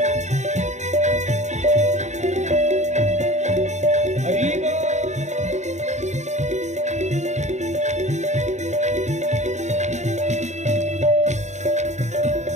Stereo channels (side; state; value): left; late; 0.34 ms